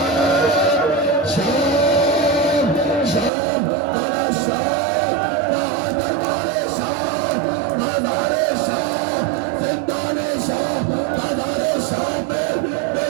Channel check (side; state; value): left; drops out; at 3.3 s